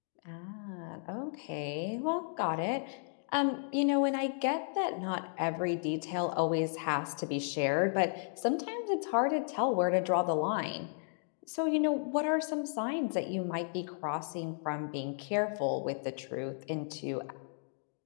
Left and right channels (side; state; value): right; silent; digital silence